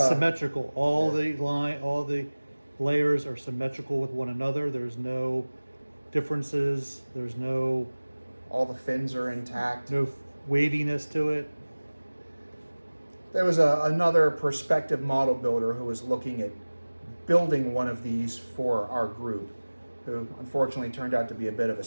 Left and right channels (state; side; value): inverted; both; correlation -1.00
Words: symmetrical. All the layers are symmetrical with one another. There's no differences. There's all the fins are intact. No waviness to it. There was another prospective model builder who was looking at building one of these for our group, who unfortunately turned out to be a bit of a